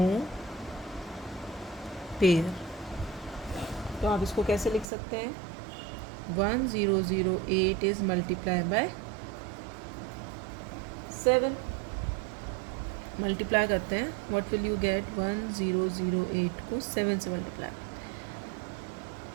pair. तो आप इसको कैसे लिख सकते हैं? 1008 is multiplied by 7. मल्टीप्लाई करते हैं. What will you gate? 1008 को 7 से मल्टीप्लाई.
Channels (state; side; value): drops out; left; at 4.9 s